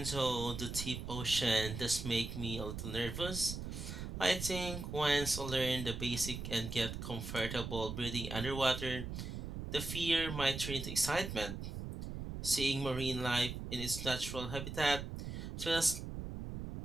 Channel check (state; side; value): noise; right; rumble, 6 dB below the sound